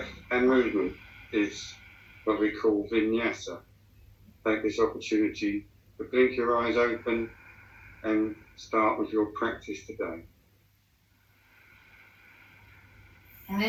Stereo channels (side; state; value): both; identical; correlation 1.00